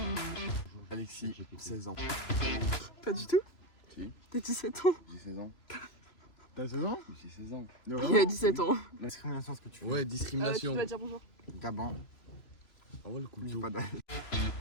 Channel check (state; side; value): late; right; 3.0 ms